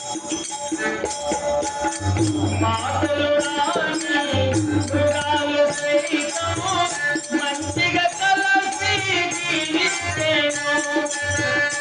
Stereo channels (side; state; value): both; identical; correlation 1.00